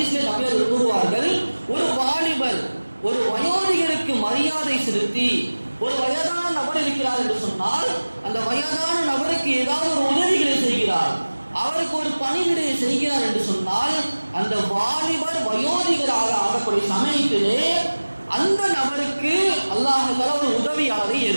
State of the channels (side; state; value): both; inverted; correlation -1.00